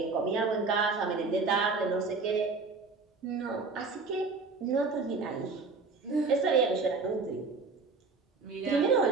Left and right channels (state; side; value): quieter; left; 4.2 dB